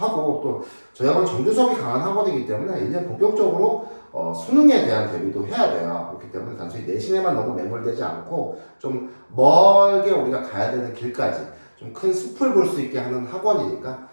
또 저희 학원 정규 수업이 강한 학원이기 때문에 이제 본격적으로 수능에 대한 대비도 해야 돼요. 그렇기 때문에 단순히 내신에만 너무 매몰되지 않고 좀 멀게 우리가 가야 되는 길까지 좀 큰 숲을 볼 수 있게 하는 학원이니까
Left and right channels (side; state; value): both; inverted; correlation -1.00